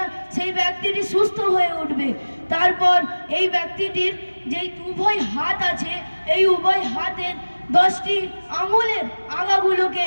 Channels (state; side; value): inverted; both; correlation -1.00